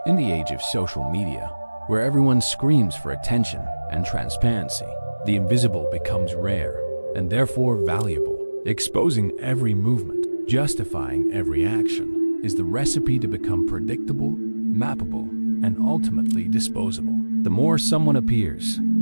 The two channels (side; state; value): both; inverted; correlation -1.00